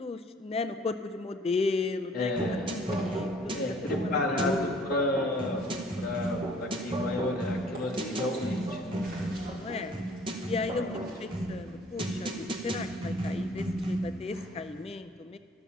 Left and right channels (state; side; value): normal; both; correlation 0.56